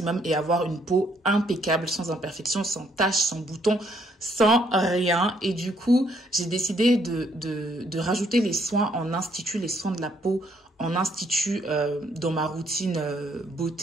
et avoir une peau impeccable, sans imperfection, sans taches, sans boutons, sans rien. Et du coup, j'ai décidé de rajouter les soins en institut, les soins de la peau en institut dans ma routine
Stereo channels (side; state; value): both; normal; correlation 0.70